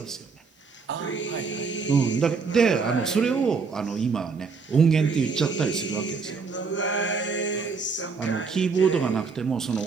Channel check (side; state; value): left; quieter; 5.0 dB